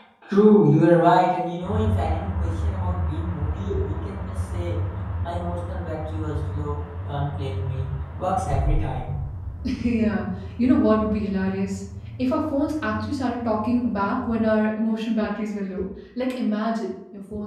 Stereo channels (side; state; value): both; identical; correlation 1.00